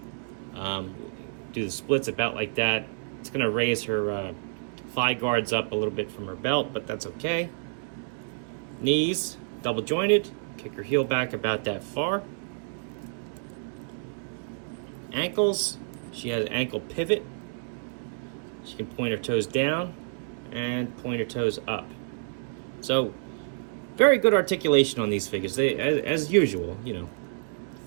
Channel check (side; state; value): left; silent; digital silence